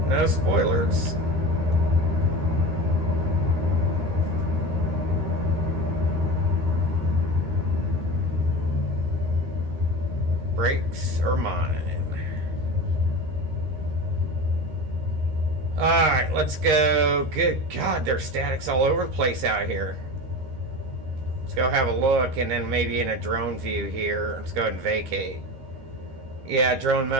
No spoilers. brakes are mine. Alright, let's go. Good God, there's statics all over the place out here. Let's go have a look, and then maybe in a drone view here. Let's go ahead and vacate. Yeah, drone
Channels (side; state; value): left; late; 13 ms